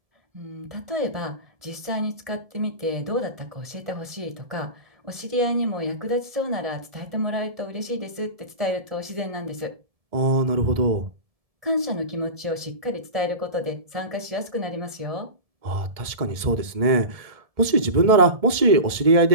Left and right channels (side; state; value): left; late; 1.7 ms